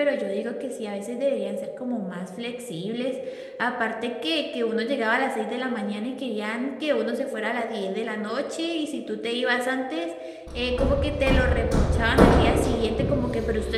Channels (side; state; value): both; identical; correlation 1.00